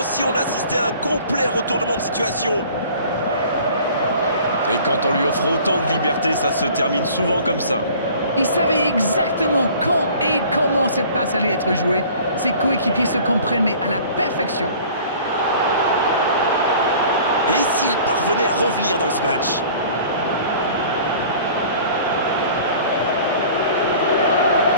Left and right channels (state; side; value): inverted; both; correlation -0.48